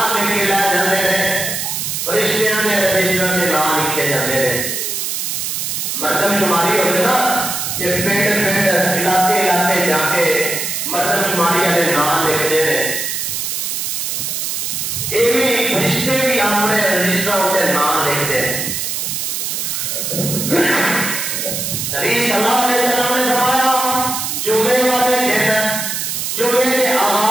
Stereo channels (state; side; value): noise; right; hiss, 2 dB below the sound